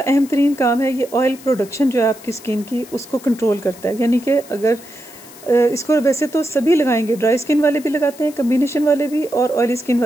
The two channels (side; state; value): left; noise; hiss, 20 dB below the sound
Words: तरीन काम है, ये ऑयल प्रोडक्शन जो है आपकी स्किन की उसको कंट्रोल करता है। यानी कि अगर इसको वैसे तो सभी लगाएंगे, ड्राई स्किन वाले भी लगाते हैं, कम्बिनेशन वाले भी और ऑयली स्किन